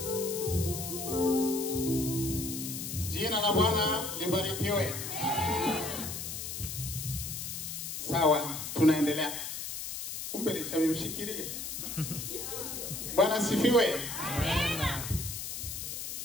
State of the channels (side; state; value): left; noise; hiss, 6 dB below the sound